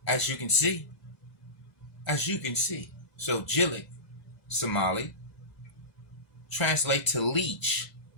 As you can see. So Jileec, Somali, translate to leech.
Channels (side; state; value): right; late; 2.0 ms